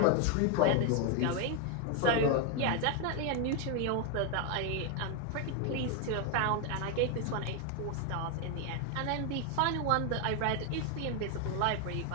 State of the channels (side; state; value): both; different; correlation 0.01